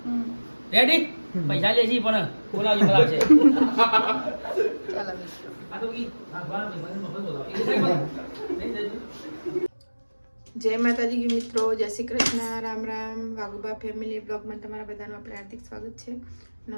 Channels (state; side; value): inverted; both; correlation -1.00